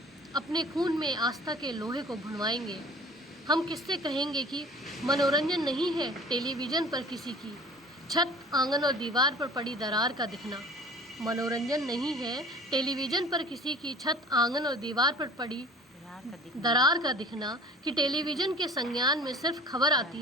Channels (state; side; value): normal; both; correlation 0.45